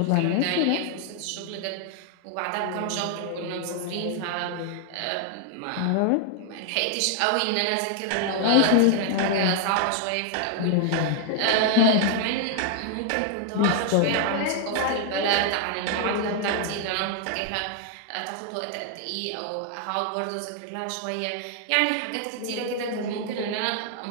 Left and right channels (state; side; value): different; both; correlation 0.00